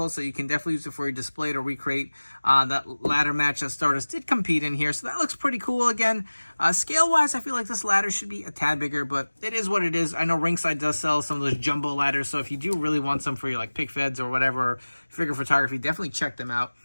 so you can definitely use it for your display to recreate that ladder match that Stardust did compete in here. So that looks pretty cool. Again, scale-wise, I feel like this ladder should be a tad bigger, but it is what it is. I know Ringside does sell some of those jumbo ladders, so if you do really want some for your pick feds or whatever, figure photography, definitely check them out.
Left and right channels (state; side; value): inverted; both; correlation -1.00